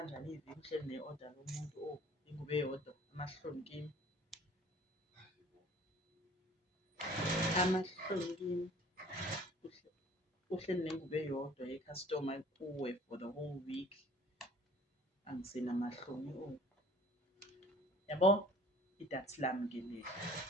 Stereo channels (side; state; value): both; normal; correlation 0.51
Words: iviki uhleli ne-order lomuntu ingubo eyodwa amahloni kimi uhleli nengubo eyodwa ye-customer kuwe for the whole week angisenamahloni yabo idathi lami ke leli